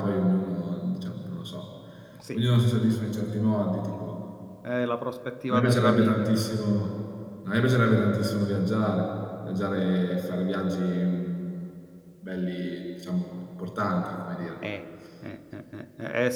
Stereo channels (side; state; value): both; identical; correlation 1.00